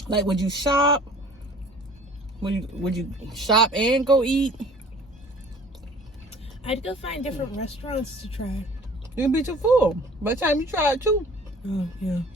Like, would you shop? Would you shop and go eat? I'd go find different restaurants to try. You'll be too full by the time you try it too. Oh, yeah,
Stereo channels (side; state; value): both; normal; correlation 0.49